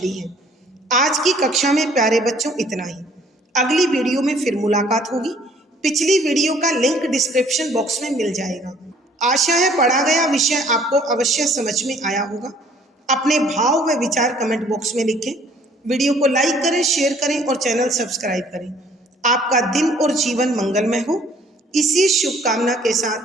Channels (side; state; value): both; normal; correlation 0.58